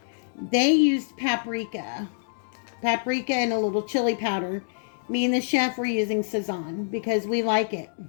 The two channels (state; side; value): silent; right; digital silence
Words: They used paprika and a little chili powder. Me and the chef were using Sazon because we like it.